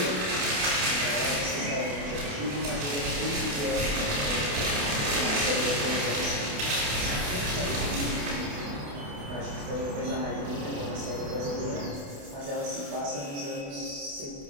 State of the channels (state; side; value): late; left; 28 ms